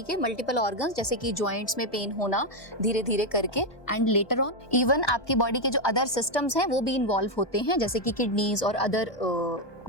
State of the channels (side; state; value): right; late; 1.2 ms